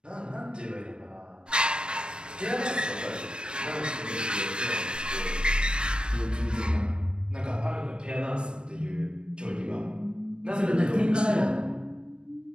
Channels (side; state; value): left; late; 0.054 ms